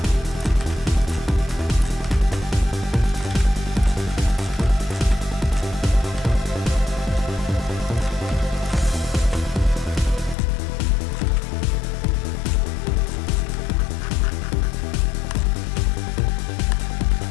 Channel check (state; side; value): drops out; right; at 10.4 s